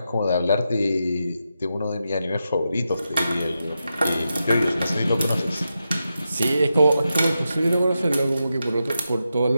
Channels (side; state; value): both; inverted; correlation -0.87